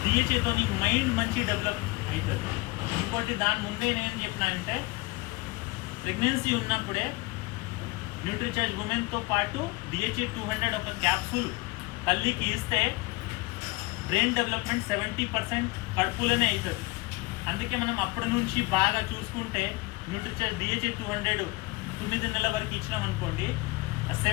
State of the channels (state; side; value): quieter; right; 23.5 dB